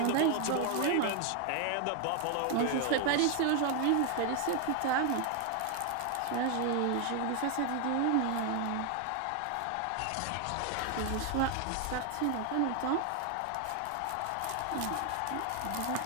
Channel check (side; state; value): both; different; correlation 0.00